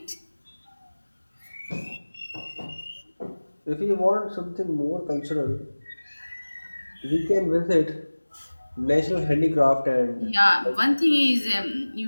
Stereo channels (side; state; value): both; inverted; correlation -1.00